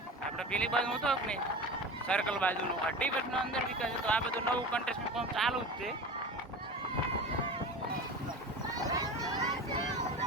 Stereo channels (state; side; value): normal; both; correlation 0.31